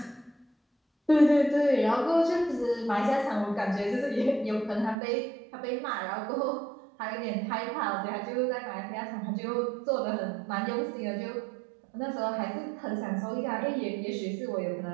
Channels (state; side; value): drops out; left; at 5.0 s